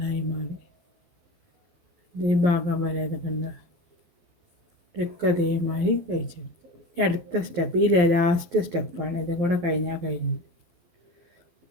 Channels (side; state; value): left; late; 12 ms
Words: മാറി. ഈ ഭാഗം വരെ ഇത് കണ്ട ഇതൊക്കെ അതേമാതിരി തയ്ച്ചെടുത്തു. അടുത്ത സ്റ്റെപ്പ് ഈ ലാസ്റ്റ് സ്റ്റെപ്പാണ്. ഇതും കൂടെ കഴിഞ്ഞാൽ കഴിഞ്ഞു.